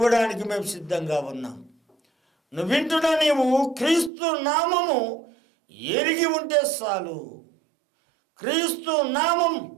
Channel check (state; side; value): drops out; left; at 4.1 s